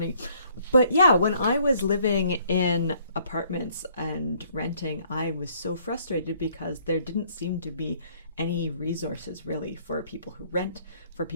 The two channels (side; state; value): both; inverted; correlation -0.63